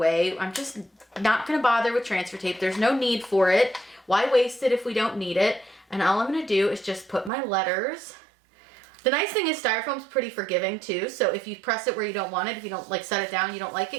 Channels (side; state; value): left; drops out; at 7.3 s